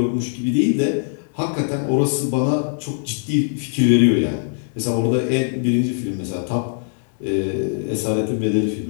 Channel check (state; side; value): silent; right; 65 dB below the other